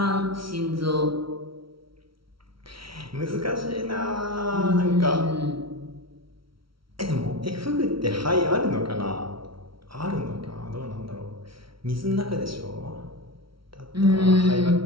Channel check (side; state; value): left; late; 0.74 ms